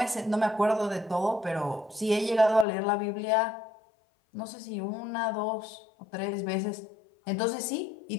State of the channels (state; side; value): drops out; right; at 2.7 s